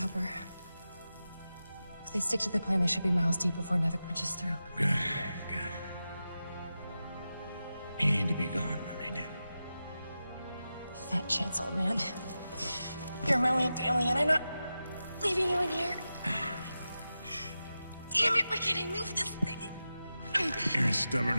If they stick to the plan, they should be miles deep before Nevik punches through. Good, good. You need to be gone when they do. Fat chance, old man. You're my only family, and I'm not leaving you in here. Damn it, why can't I move this thing? You're as stubborn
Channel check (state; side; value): inverted; both; correlation -0.92